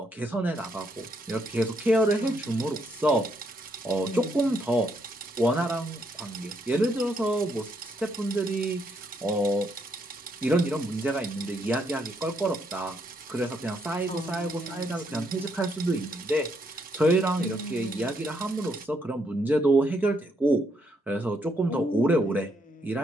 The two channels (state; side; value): normal; both; correlation 0.75